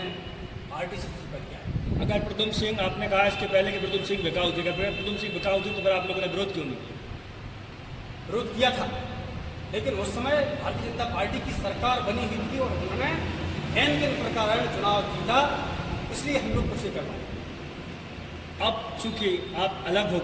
पार्टी से इस्तीफा किया है। अगर प्रद्युम्न सिंह, आपने कहा इसके पहले कि प्रद्युम्न सिंह बिकाऊ थे, अगर प्रद्युम्न सिंह बिकाऊ थे तो फिर आप लोगों ने विरोध क्यों नहीं किया? विरोध किया था, लेकिन उस समय भारतीय जनता पार्टी की सरकार बनी हुई थी और उन्होंने एन के प्रकार चुनाव जीता, इसलिए हम लोग कुछ कर पाए। अब चूंकि आप अलग हो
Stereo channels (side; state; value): both; identical; correlation 1.00